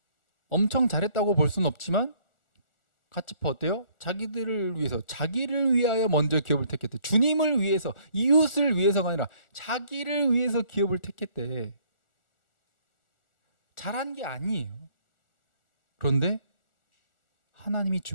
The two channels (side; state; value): right; late; 1.4 ms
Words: 엄청 잘했다고 볼 수는 없지만 같이 어때요? 자기들을 위해서, 자기를 위하여 먼저 기업을 택했대. 주님을 위해서, 이웃을 위해서가 아니라 자기를 위해서 기업을 택했대. 잘한 게 아니에요. 그런데 하나님이